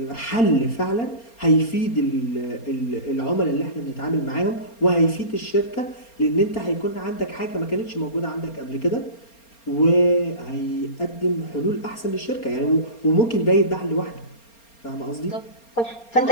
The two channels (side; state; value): right; late; 4.3 ms